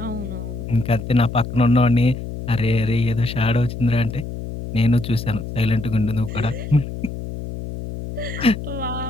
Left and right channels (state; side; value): noise; left; hum, 8 dB below the sound